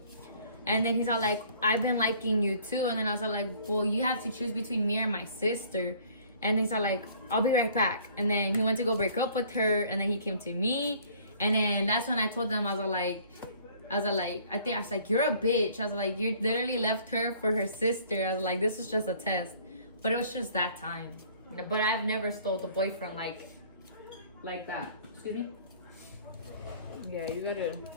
And then he's all like, I've been liking you too. And then I was like, well, you have to choose between me and my sister. And he's all like, I'll be right back. And then he went to go break up with her. And then he came to me. And then that's when I told them, I was like, you're a bitch. I was like, you literally left her for her sister. I was like, this is just a test. But it was just that time. But I've never stole a boyfriend like that. Excuse me? Yeah, you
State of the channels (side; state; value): both; inverted; correlation -0.55